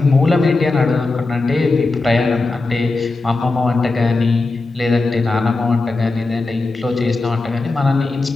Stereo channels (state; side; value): quieter; right; 3.4 dB